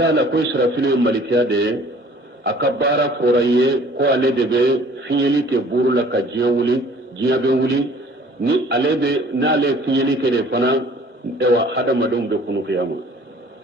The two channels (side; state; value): both; normal; correlation 0.52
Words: la ko israfil malikiya de akabara foraye ko ale de be fiyeli ke buru la ka jiya be wuli ni ale be na ale fiyeli ke de fana ewa hada madum be kunu qiyama